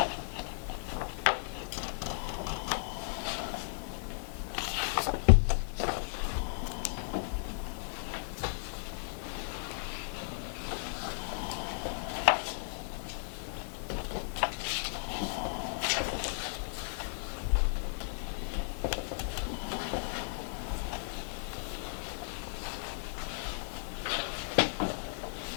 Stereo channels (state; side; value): silent; right; digital silence